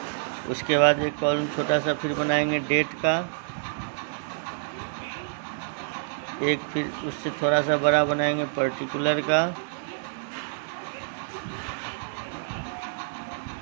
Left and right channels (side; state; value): left; silent; digital silence